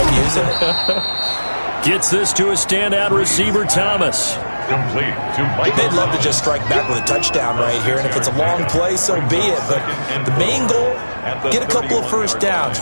using it. Gets this to a standout receiver, Thomas. Complete to Mike. They'd love to just strike back with a touchdown right here, and if it's a long play, so be it. But the main goal, get a couple of 1st downs,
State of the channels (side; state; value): both; inverted; correlation -1.00